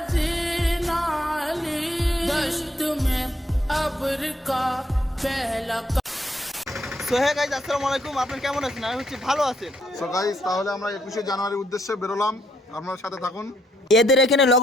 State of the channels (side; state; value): both; normal; correlation 0.74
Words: হে গাইস, আসসালামু আলাইকুম। আপনারা কেমন আছেন? আমি হচ্ছে ভালো আছেন। সো গাইস, তাহলে আমরা 21শে জানুয়ারির উদ্দেশ্যে বেরোলাম, আপনার সাথে থাকুন। এদের এখানে